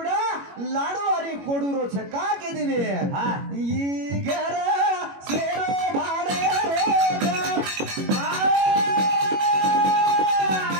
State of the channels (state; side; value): late; left; 21 ms